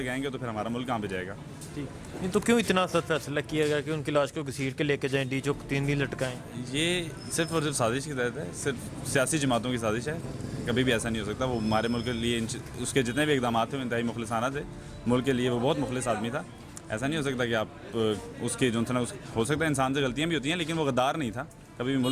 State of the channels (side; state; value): both; identical; correlation 1.00